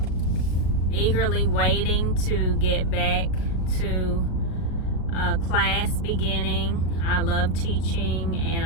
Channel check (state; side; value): late; right; 38 ms